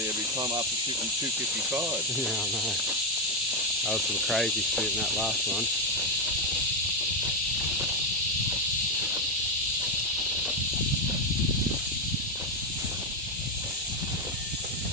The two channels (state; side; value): normal; both; correlation 0.05